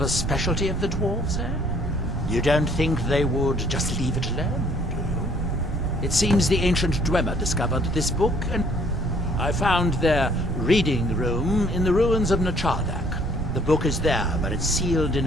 a specialty of the dwarves, eh? You don't think they would just leave it alone, do you? It seems the ancient Dwemer discovered this book, and I found their reading room in the ruins of Nachardak. The book is there, but it's sealed in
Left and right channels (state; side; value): noise; right; rumble, 5 dB below the sound